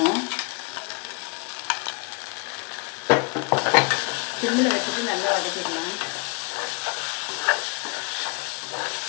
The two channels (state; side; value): quieter; right; 30.8 dB